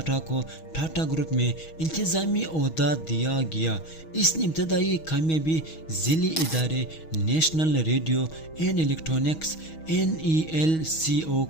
کو ٹاٹا گروپ میں انتظامی عہدہ دیا گیا۔ اس نے ابتدائی کامیابی ذیلی ادارے national radio and electronics NELCO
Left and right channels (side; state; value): right; late; 6.3 ms